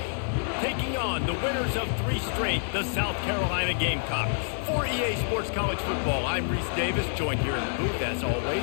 taking on the winners of 3 straight, the South Carolina Gamecocks. For EA Sports College Football, I'm Reese Davis, joined here in the booth, as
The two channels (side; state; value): right; silent; digital silence